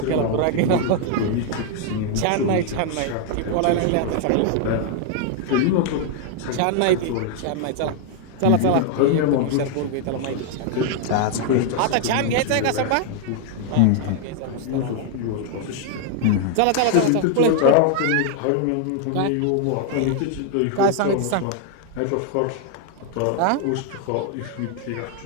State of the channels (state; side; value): different; both; correlation 0.00